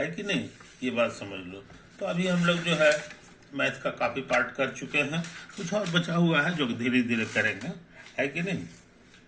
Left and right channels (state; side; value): identical; both; correlation 1.00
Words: कि नहीं? ये बात समझ लो। तो अभी हम लोग जो है मैथ का काफी पार्ट कर चुके हैं, कुछ और बचा हुआ है जो धीरे धीरे करेंगे, है कि नहीं?